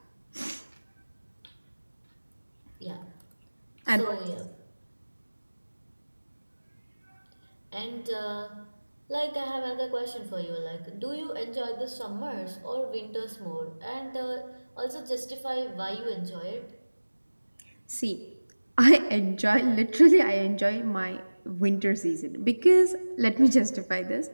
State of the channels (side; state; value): both; inverted; correlation -1.00